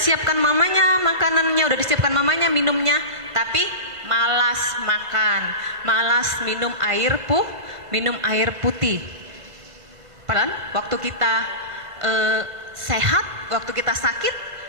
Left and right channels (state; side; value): late; left; 1.5 ms